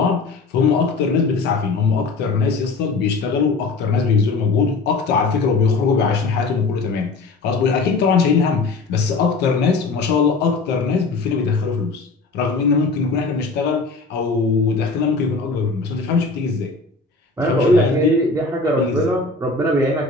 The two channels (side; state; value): right; quieter; 3.9 dB